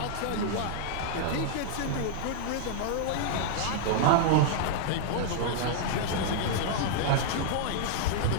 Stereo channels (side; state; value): both; different; correlation -0.01